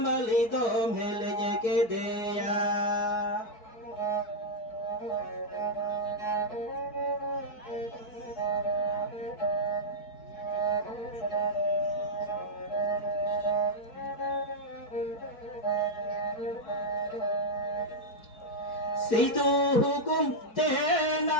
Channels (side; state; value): right; late; 4.6 ms